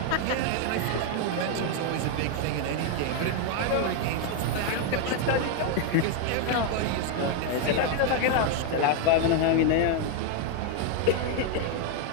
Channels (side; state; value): both; different; correlation 0.01